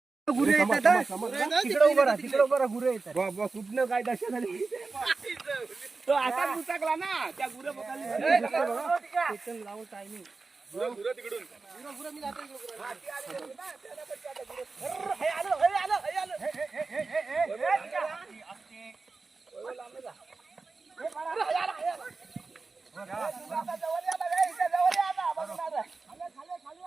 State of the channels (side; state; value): left; quieter; 4.0 dB